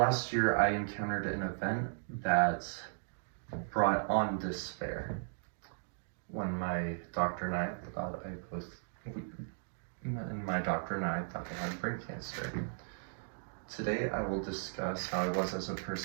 year, I encountered an event that brought on despair. When my doctor and I thought I had brain cancer. Today, I will discuss how I was as a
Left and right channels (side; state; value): left; silent; digital silence